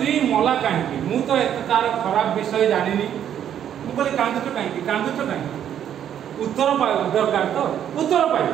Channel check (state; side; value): quieter; left; 9.8 dB